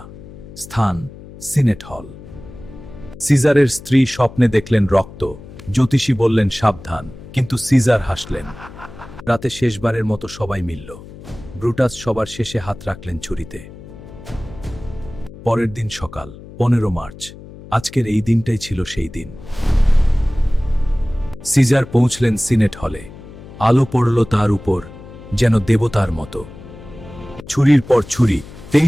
স্থান, সিনেট হল। সিজারের স্ত্রী স্বপ্নে দেখলেন রক্ত, জ্যোতিষী বললেন সাবধান, কিন্তু সিজার হাসলেন। রাতে শেষবারের মতো সবাই মিলল। ব্রুটাস সবার শেষে হাত রাখলেন ছুরিতে। পরের দিন সকাল, 15 মার্চ। আজকের এই দিনটাই ছিল সেই দিন। সিজার পৌঁছলেন সিনেট হলে। আলো পড়ল তার উপর, যেন দেবতার মতো। ছুরির পর ছুরি,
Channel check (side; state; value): left; noise; hum, 17 dB below the sound